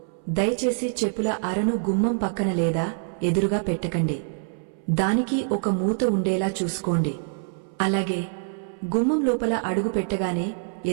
దయచేసి చెప్పుల అరను గుమ్మం పక్కన లేదా ఎదురుగా పెట్టకండి. దానికి ఒక మూత ఉండేలా చూసుకోండి. అలాగే గుమ్మం లోపల అడుగు పెట్టగానే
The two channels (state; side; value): silent; left; 62 dB below the other